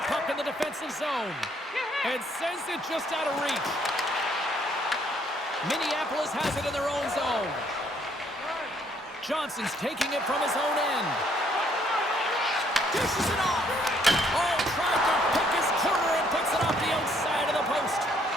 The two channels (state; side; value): normal; both; correlation 0.67